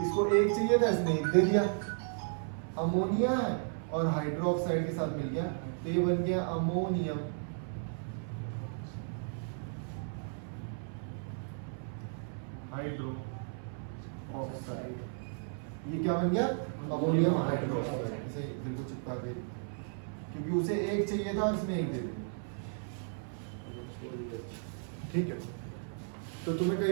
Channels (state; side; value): silent; left; 55 dB below the other